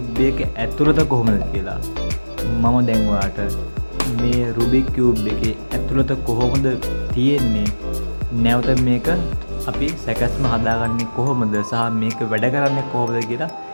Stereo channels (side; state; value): both; inverted; correlation -1.00